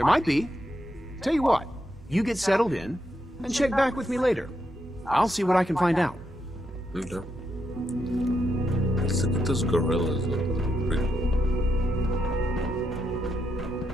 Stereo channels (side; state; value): both; normal; correlation 0.81